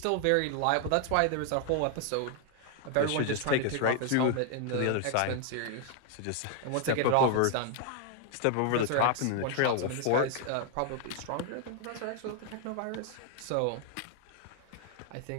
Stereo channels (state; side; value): different; both; correlation 0.00